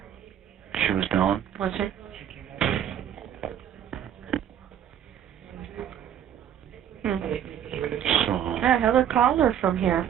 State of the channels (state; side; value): quieter; left; 9.7 dB